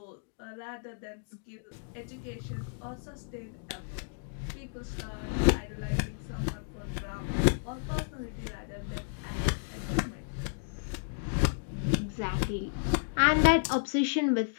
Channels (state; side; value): silent; right; digital silence